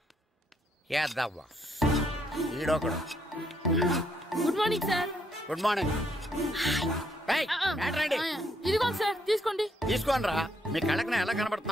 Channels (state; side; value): normal; both; correlation 0.73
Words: యాదవ్వా ఈడొకడు. Good morning sir. Good morning. ఇదిగోండి సార్, తీసుకోండి. తీసుకోండి రా. మీ కళ్ళకి ఎలా